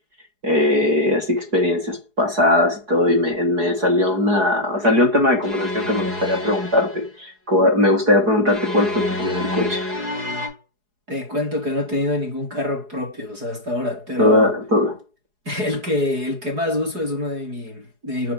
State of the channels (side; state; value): left; late; 4.8 ms